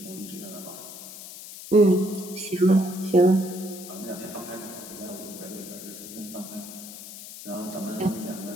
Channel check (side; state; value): left; noise; hiss, 13 dB below the sound